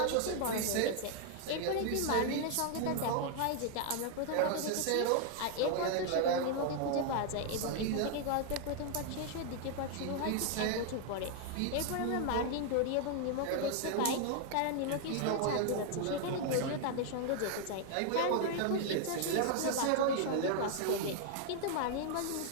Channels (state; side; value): different; both; correlation 0.00